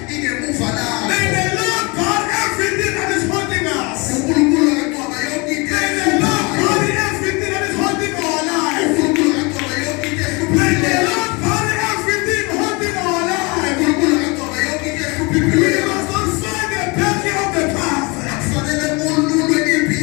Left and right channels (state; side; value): quieter; right; 28.0 dB